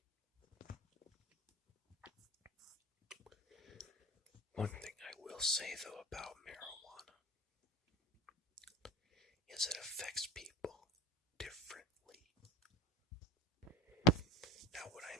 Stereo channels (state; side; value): normal; both; correlation 0.34